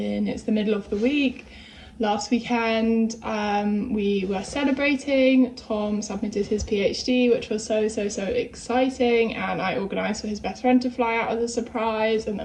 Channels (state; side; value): identical; both; correlation 1.00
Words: middle of the week. Last weekend we were celebrating. Tom submitted his PhD, which was so exciting, and I organised for his best friend to fly out as a surprise, and